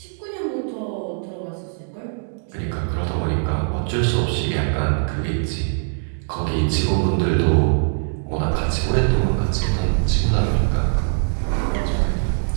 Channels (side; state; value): left; silent; digital silence